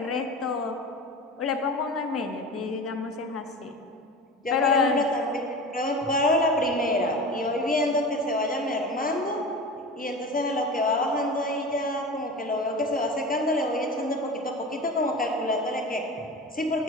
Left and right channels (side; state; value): both; normal; correlation 0.32